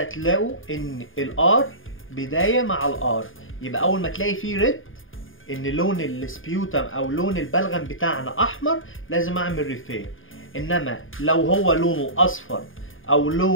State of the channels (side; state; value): right; late; 0.58 ms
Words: تلاقوا ان الار بداية مع الار، يبقى اول ما تلاقي فيه ريد ان لون السبيوتم او لون البلغم بتاعنا احمر، لازم اعمل ريفير. انما لو هو لونه اصفر او